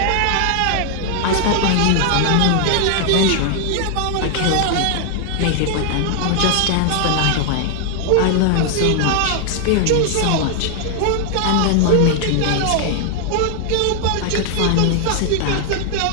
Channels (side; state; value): both; different; correlation 0.00